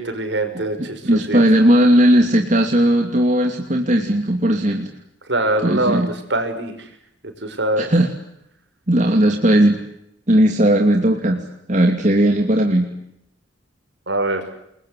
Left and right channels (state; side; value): normal; both; correlation 0.65